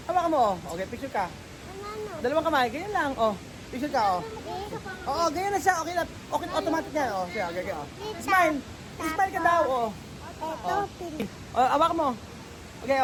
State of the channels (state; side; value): identical; both; correlation 1.00